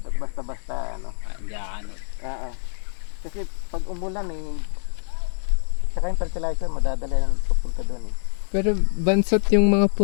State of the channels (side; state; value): right; silent; digital silence